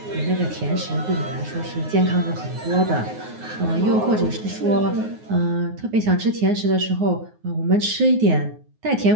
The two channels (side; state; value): left; late; 9.5 ms